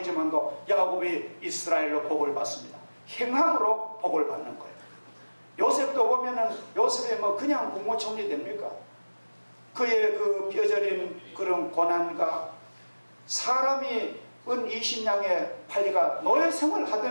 야곱이 이스라엘로 복을 받습니다. 행함으로 복을 받는 거예요. 요셉도 보면은, 요셉이 뭐 그냥 국무총리 됩니까? 그의 그 뼈저린 그런 고난과, 사람이 은 20냥에 팔리가 노예 생활을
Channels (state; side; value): inverted; both; correlation -1.00